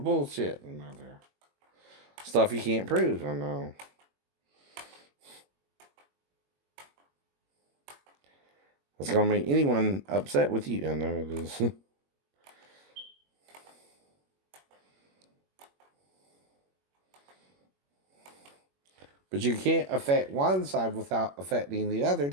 Another stuff you can't prove. I know. It's going to make anyone upset with you. I know it is. But you can't affect one side without affecting the other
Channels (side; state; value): left; late; 21 ms